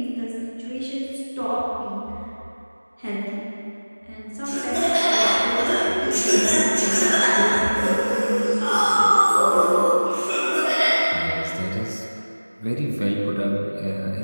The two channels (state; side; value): inverted; both; correlation -1.00